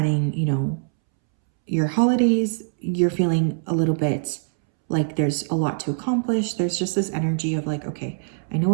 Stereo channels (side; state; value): left; silent; 64 dB below the other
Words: you know, your holidays. You're feeling a little bit like there's a lot to accomplish. There's just this energy of like, okay, I know